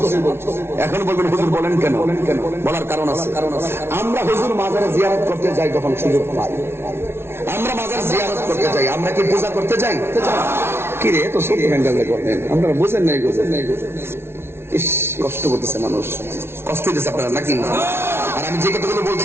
এখন বলবেন হুজুর বলেন কেন? বলার কারণ আছে। আমরা হুজুর মাজারে জিয়ারত করতে যাই যখন সুযোগ পাই, আমরা মাজার জিয়ারত করতে যাই, আমরা কি পূজা করতে যাই? কি রে তো ছোট হ্যান্ডেল করতেন আপনারা, বুঝেন নাই? ইস, কষ্ট করতেছে মানুষ, কষ্ট হইতেছে আপনারা নাকি? আর আমি যে কথাগুলো বলছি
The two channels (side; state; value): left; late; 0.12 ms